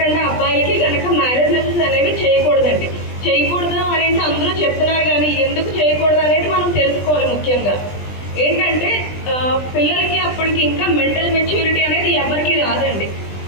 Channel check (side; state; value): right; late; 20 ms